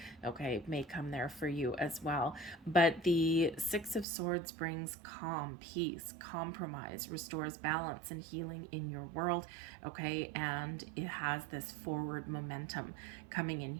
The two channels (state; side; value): drops out; left; at 4.0 s